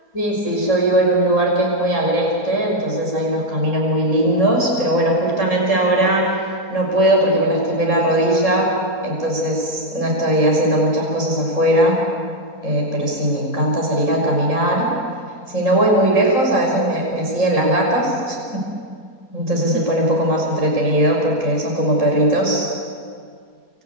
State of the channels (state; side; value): late; right; 4.3 ms